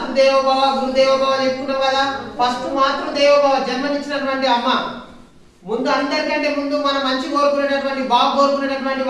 గురుదేవోభవ చెప్పుకున్నాం కదా. ఫస్ట్ మాతృదేవోభవ, జన్మనిచ్చినటువంటి అమ్మ. ముందు అందరికంటే ముందు మనం మంచి కోరుకునేటటువంటి, బాగు కోరుకునేటటువంటి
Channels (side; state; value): both; identical; correlation 1.00